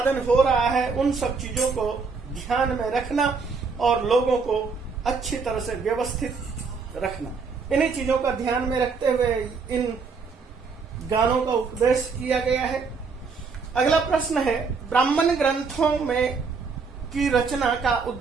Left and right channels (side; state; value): left; quieter; 4.9 dB